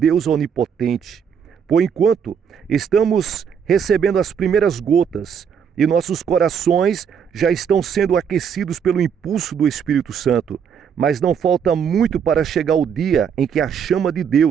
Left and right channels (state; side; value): quieter; left; 7.4 dB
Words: onipotente. Por enquanto, estamos recebendo as primeiras gotas e nossos corações já estão sendo aquecidos pelo impulso do Espírito Santo. Mas não falta muito para chegar o dia em que a chama de